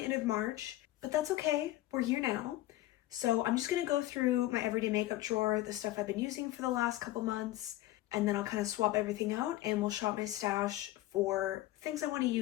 end of March, but that's okay. We're here now. So I'm just gonna go through my everyday makeup drawer, the stuff I've been using for the last couple months, and then I'll kind of swap everything out and we'll shop my stash for things I want to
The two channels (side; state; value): right; quieter; 16.2 dB